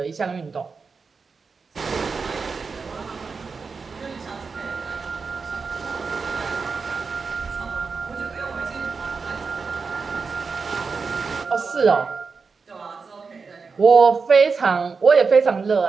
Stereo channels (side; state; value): left; quieter; 4.9 dB